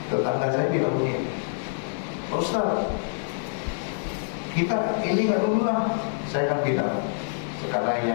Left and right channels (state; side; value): silent; right; digital silence